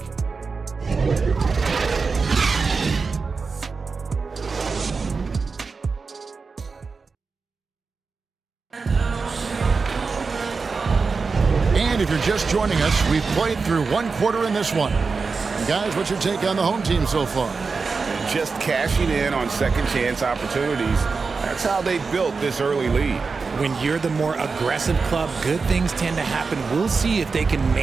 And if you're just joining us, we've played through 1 quarter in this one. And guys, what's your take on the home team so far? Just cashing in on second chance opportunities. That's how they built this early lead. When you're the more aggressive club, good things tend to happen. We'll see if they can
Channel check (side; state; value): left; quieter; 4.7 dB